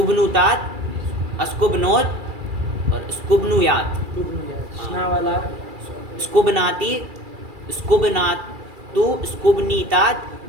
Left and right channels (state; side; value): late; left; 2.3 ms